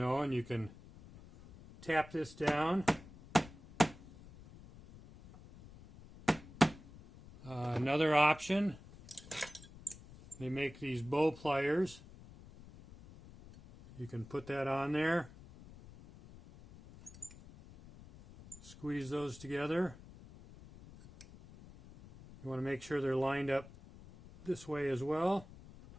and you can tap this down. Another option, they make these bow pliers. You can put that on there, squeeze those together. You want to make sure they're lined up this way as well.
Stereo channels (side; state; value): left; noise; rumble, 19 dB below the sound